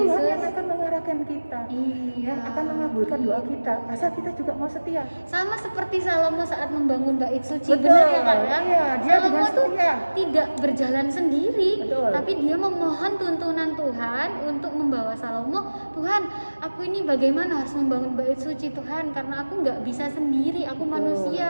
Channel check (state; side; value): inverted; both; correlation -1.00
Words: Yesus. yang akan mengarahkan kita. Iya. Ya, akan mengabulkan doa kita. Asal kita juga mau setia. Sama seperti Salomo saat membangun bait suci, Betul. benar ya Kak ya? Iya, dia Salomo dengan tuh setia. tidak berjalan sendiri, Betul. tapi dia memohon tuntunan Tuhan untuk membawa Salomo. Tuhan, aku ini bagaimana harus membangun bait suci Tuhan? Karena aku nggak bisa sendiri, aku Betul.